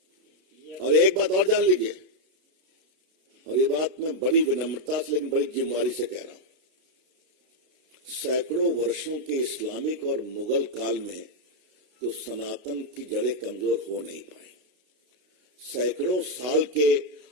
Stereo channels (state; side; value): late; left; 32 ms